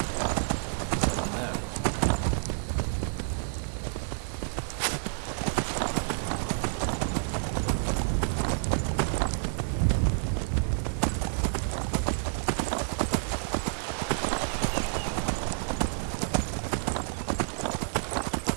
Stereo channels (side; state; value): left; silent; digital silence